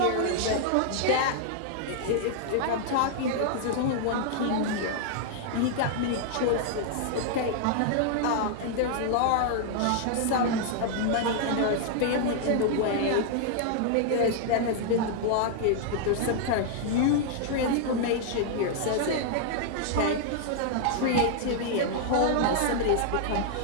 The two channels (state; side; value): different; both; correlation -0.01